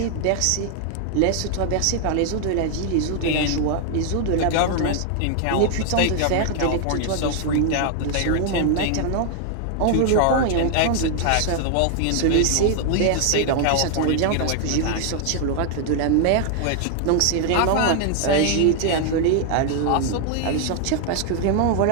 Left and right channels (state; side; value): different; both; correlation 0.00